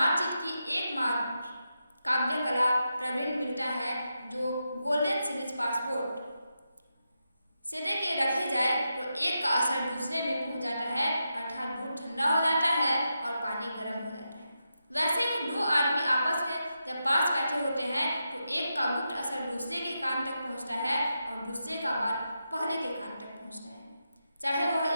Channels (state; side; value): inverted; both; correlation -0.87